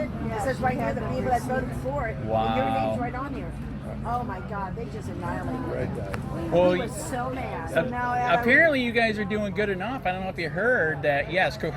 It says right here the people that voted for it. And your Wow. name's right on here. Oh my God, they just annihilated him. Well, He was so mad. apparently you guys are doing good enough. I don't know if you heard that. Yes,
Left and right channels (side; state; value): both; identical; correlation 1.00